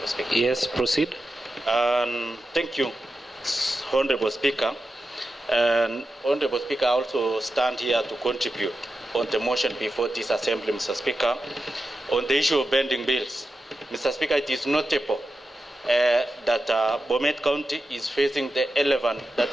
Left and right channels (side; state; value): both; normal; correlation 0.90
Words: Speaker. Yes, proceed. Thank you, Honorable Speaker. And Honorable Speaker, I also stand here to contribute on the motion before this Assembly, Mr. Speaker, on the issue of pending bills. Mr. Speaker, it is notable that Bomet County is facing the elephant that